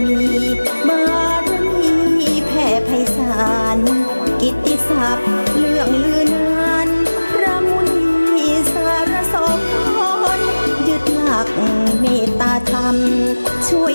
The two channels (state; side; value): inverted; both; correlation -1.00